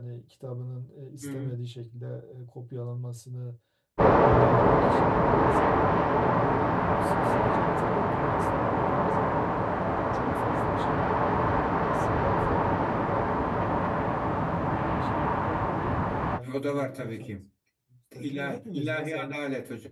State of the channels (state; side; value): identical; both; correlation 1.00